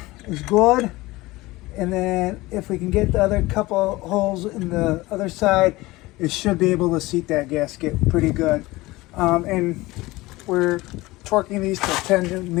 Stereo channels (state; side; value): quieter; right; 20.0 dB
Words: is good, and then if we can get the other couple holes in the other side, it should be able to seat that gasket pretty good. And we're torquing these to 10